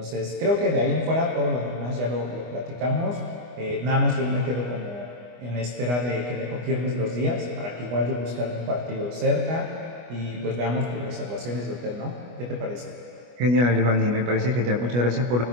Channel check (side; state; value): left; late; 25 ms